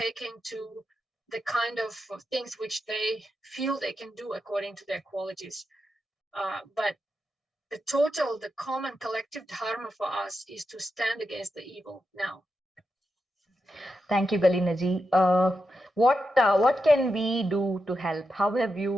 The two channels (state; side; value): normal; both; correlation 0.87